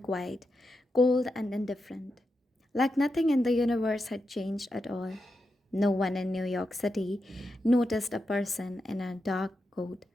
quiet, cold and indifferent, like nothing in the universe had changed at all. No one in New York City noticed a person in a dark coat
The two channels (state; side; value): normal; both; correlation 0.87